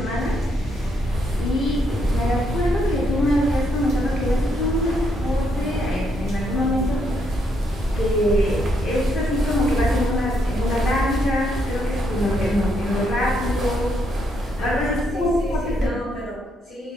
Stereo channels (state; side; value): normal; both; correlation 0.76